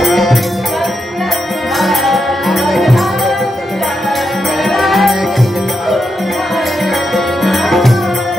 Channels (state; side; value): normal; both; correlation 0.85